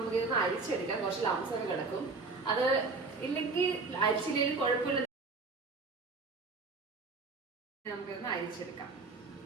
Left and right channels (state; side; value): quieter; left; 4.0 dB